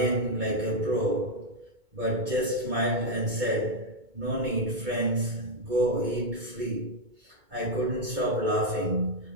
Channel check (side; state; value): left; late; 2.2 ms